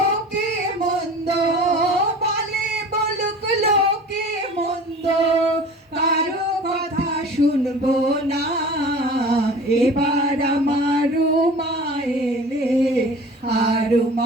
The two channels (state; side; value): normal; both; correlation 0.41